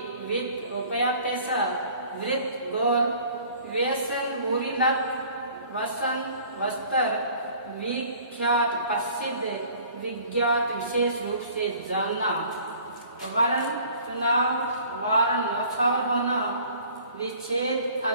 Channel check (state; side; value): inverted; both; correlation -0.51